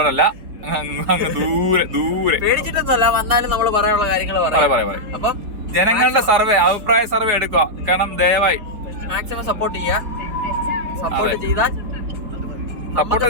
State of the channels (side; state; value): left; late; 4.7 ms